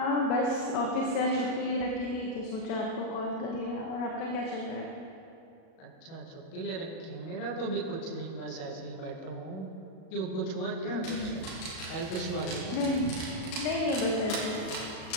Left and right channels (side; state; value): right; late; 37 ms